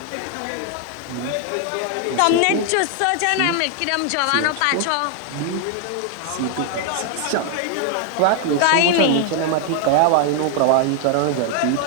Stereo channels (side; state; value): both; different; correlation 0.00